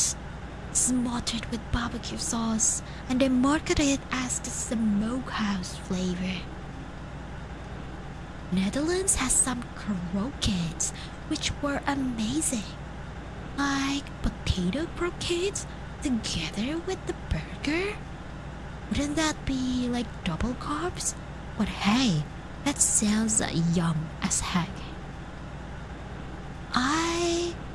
smothered with barbecue sauce, and they market it as the smokehouse flavor. Netherlands has some croquettes which were amazing, like potato croquettes together with the burger. Wouldn't that be like double carbs? But hey, that sounds yum as heck. I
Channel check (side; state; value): both; identical; correlation 1.00